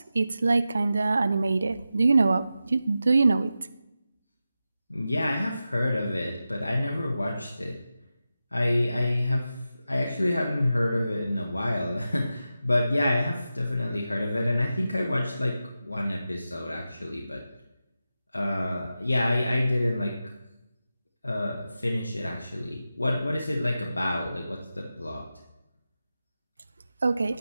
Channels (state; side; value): inverted; both; correlation -0.92